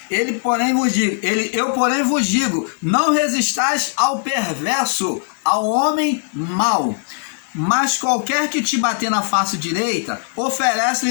Eu porém vos digo, não resistais ao perverso, ao homem mau. Mas qualquer que te bater na face direita,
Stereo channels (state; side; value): silent; right; digital silence